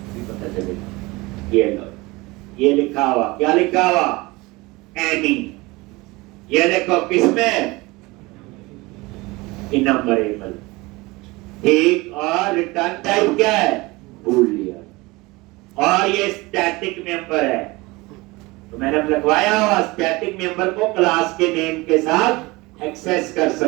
पता चलेगा। ये लो, ये लिखा हुआ, क्या लिखा हुआ? एनी। ये देखो किसमें? इनम्बरेबल। ठीक, और रिटर्न टाइप क्या है? बूलियन। और ये स्टैटिक मेंबर है, तो मैंने लिखवाया हुआ स्टैटिक मेंबर को क्लास के नेम के साथ एक्सेस कर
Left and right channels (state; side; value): quieter; left; 22.8 dB